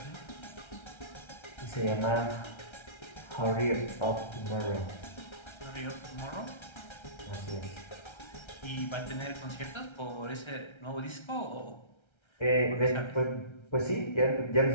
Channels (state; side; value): late; right; 1.3 ms